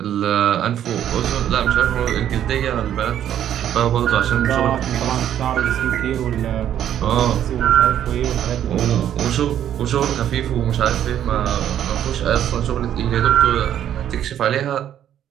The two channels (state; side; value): quieter; left; 10.5 dB